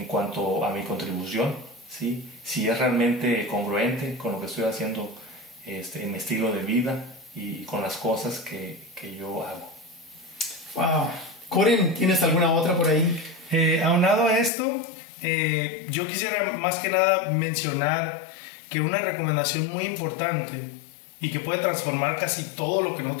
cuanto a mi contribución, ¿sí? Si es realmente congruente con lo que estoy haciendo en mi estilo de vida y con las cosas que yo hago. Wow. Coren, ¿tienes alguna otra por ahí? Aunado a esto, yo quisiera más que nada mencionar que una recomendación muy importante y que puede transformar casi todo lo que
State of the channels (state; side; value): drops out; right; at 14.5 s